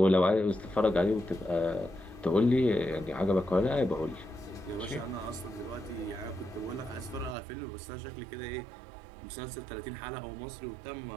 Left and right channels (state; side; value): drops out; left; at 7.4 s